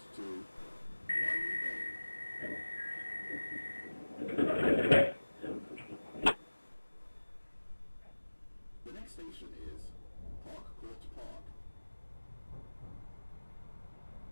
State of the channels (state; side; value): inverted; both; correlation -1.00